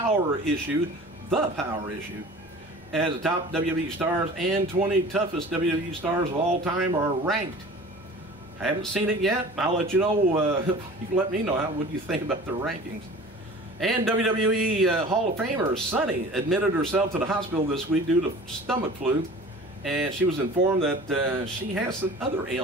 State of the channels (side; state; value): both; normal; correlation 0.42